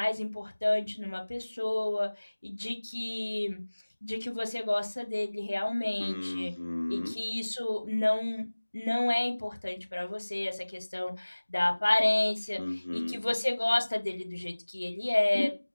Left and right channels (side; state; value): both; inverted; correlation -1.00